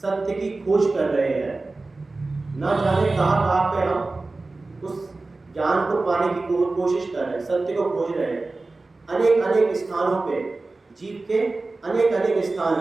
की खोज कर रहे हैं, ना जाने कहाँ पे हम उस ज्ञान को पाने की कोशिश कर रहे हैं, सत्य को खोज रहे हैं। अनेक स्थानों पे जीव के अनेक स्थान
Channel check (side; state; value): left; quieter; 3.4 dB